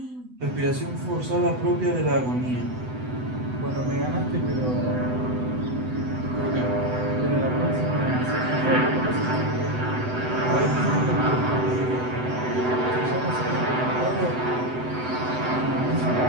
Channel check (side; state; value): left; late; 8.0 ms